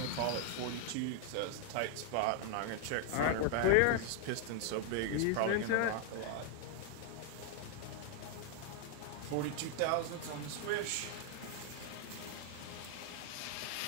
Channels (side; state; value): both; different; correlation 0.00